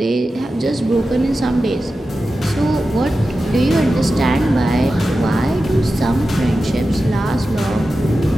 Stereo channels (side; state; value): both; normal; correlation 0.93